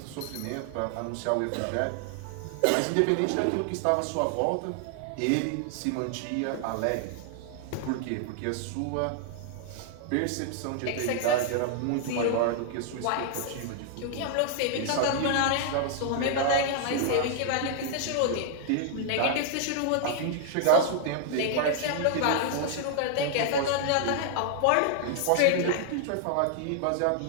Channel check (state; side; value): different; both; correlation 0.00